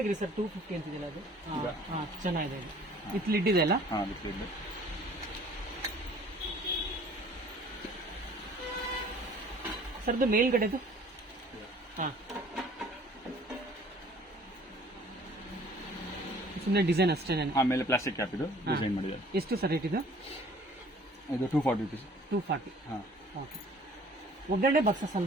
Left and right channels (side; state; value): both; normal; correlation 0.53